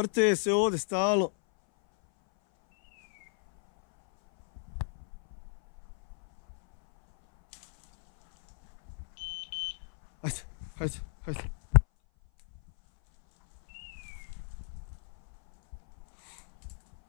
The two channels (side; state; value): right; silent; 56 dB below the other